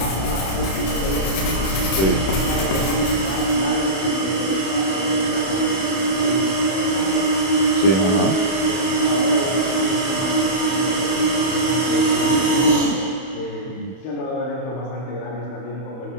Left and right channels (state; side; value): late; right; 31 ms